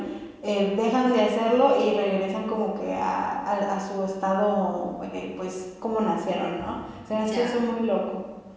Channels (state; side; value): identical; both; correlation 1.00